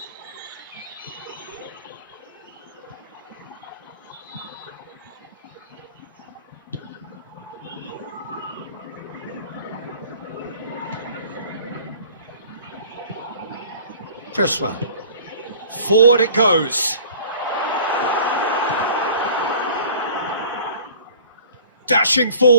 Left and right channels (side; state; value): both; inverted; correlation -0.48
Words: Cresswell. Forward it goes. Dashing